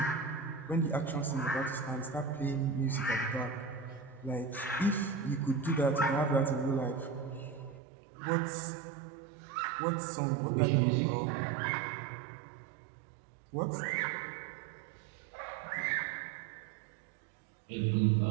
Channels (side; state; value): left; drops out; at 7.8 s